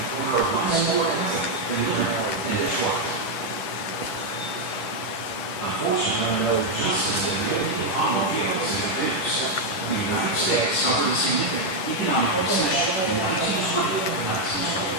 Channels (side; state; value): right; late; 10 ms